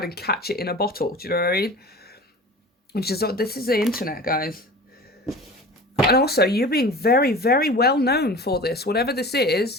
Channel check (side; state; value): both; normal; correlation 0.37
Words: and catch it in a bottle. Do you know what I mean? This is the internet, guys. And also, you're being very, very well known for this. Whatever this